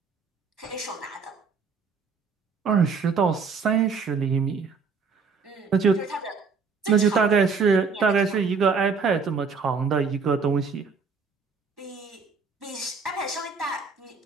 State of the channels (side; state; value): left; quieter; 5.1 dB